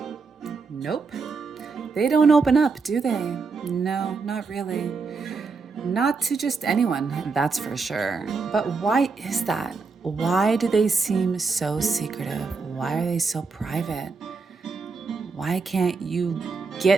Nope. They don't open up, do they? No, not really. Not to just anyone, that's for sure. But why is that? Why do they seem so secretive? Why are they so private? Why can't you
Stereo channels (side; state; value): left; quieter; 4.6 dB